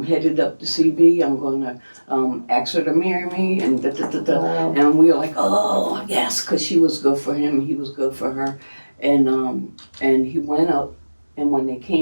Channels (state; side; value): inverted; both; correlation -1.00